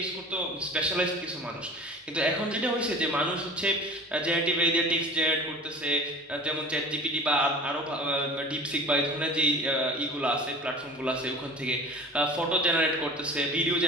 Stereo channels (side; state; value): both; normal; correlation 0.40